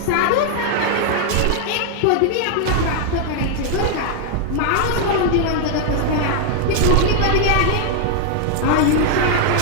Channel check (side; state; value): both; different; correlation 0.00